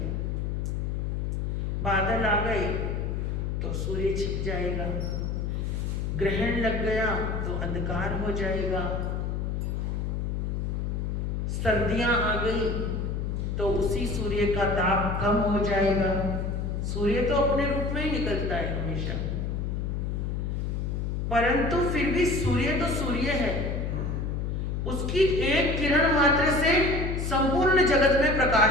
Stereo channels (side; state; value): left; noise; hum, 1 dB below the sound